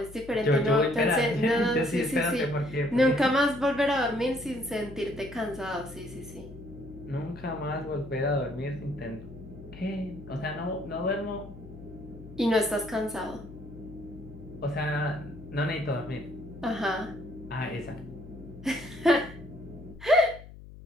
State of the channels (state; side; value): noise; left; hum, 17 dB below the sound